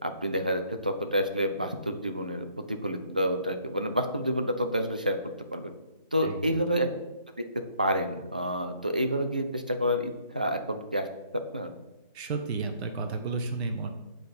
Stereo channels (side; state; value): both; inverted; correlation -0.62